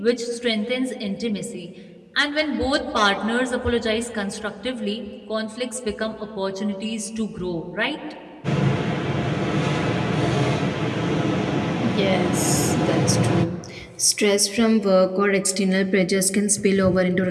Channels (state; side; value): identical; both; correlation 1.00